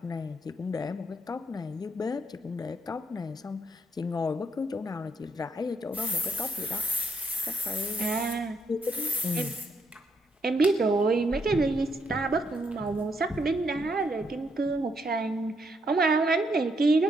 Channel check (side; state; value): both; normal; correlation 0.75